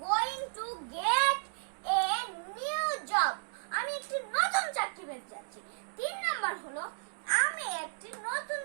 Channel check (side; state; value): left; silent; digital silence